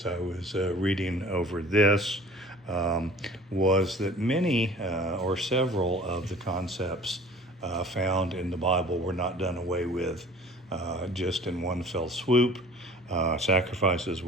I was reading over this was that many or several of the concepts found in the Bible were not done away with just in one fell swoop. Sacrifices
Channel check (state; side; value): normal; both; correlation 0.46